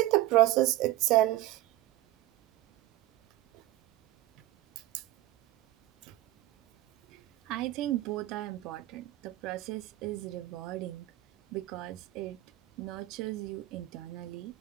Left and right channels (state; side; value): quieter; left; 16.5 dB